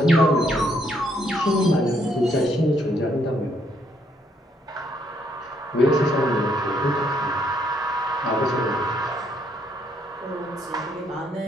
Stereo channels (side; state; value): both; normal; correlation 0.71